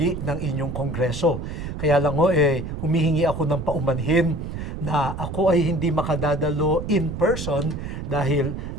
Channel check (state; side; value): noise; right; rumble, 6 dB below the sound